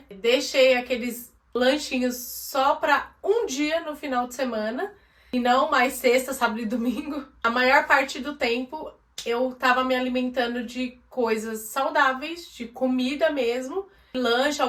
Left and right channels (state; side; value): identical; both; correlation 1.00